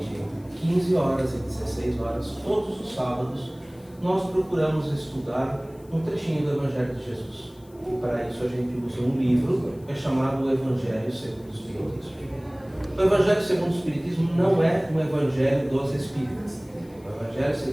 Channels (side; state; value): left; noise; hiss, 29 dB below the sound